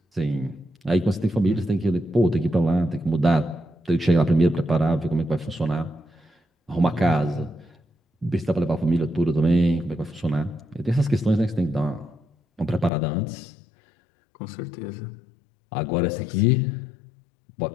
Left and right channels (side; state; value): right; drops out; at 12.9 s